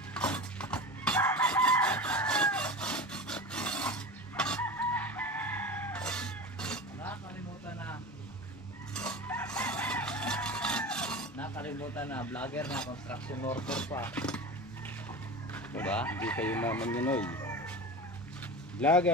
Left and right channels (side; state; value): both; normal; correlation 0.30